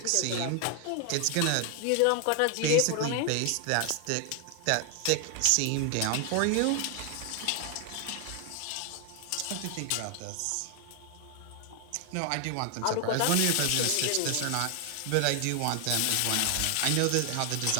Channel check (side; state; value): both; different; correlation 0.00